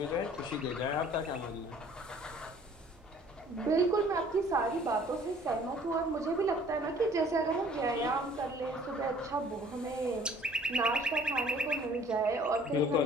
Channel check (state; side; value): normal; both; correlation 0.54